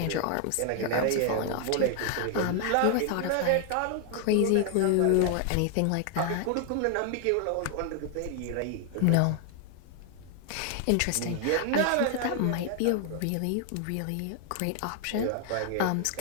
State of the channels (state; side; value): different; both; correlation 0.00